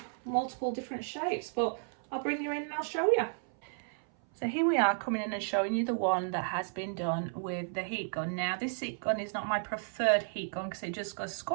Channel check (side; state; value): left; silent; 56 dB below the other